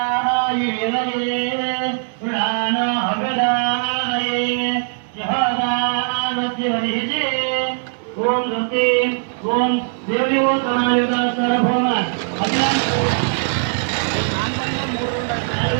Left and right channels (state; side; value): silent; left; digital silence